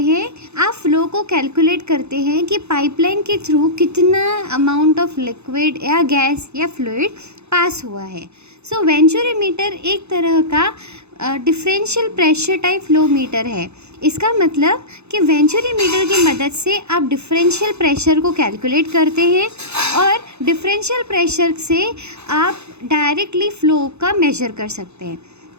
हैं, आप फ्लो को कैलकुलेट करते हैं कि पाइपलाइन के थ्रू कितना अमाउंट ऑफ लिक्विड या गैस या फ्लूइड पास हुआ है। सो वेंचुरी मीटर एक तरह का differential pressure type flow meter है। इसका मतलब कि वेंचुरी मीटर की मदद से आप डिफरेंशियल प्रेशर को कैलकुलेट करते हैं और डिफरेंशियल प्रेशर से आप डायरेक्टली फ्लो का मेजर कर सकते हैं।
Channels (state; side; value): late; left; 0.81 ms